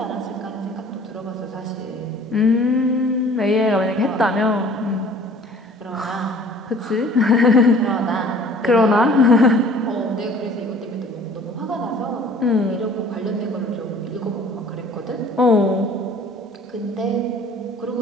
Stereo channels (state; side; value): normal; both; correlation 0.50